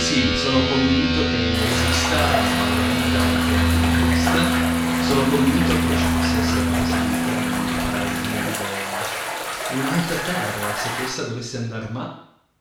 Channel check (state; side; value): identical; both; correlation 1.00